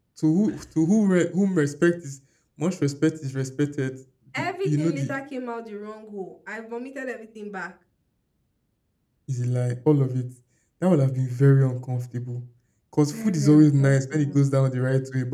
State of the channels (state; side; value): identical; both; correlation 1.00